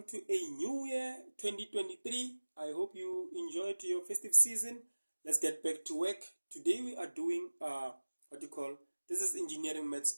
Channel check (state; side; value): inverted; both; correlation -1.00